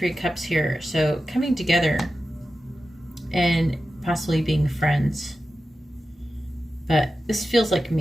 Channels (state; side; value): normal; both; correlation 0.92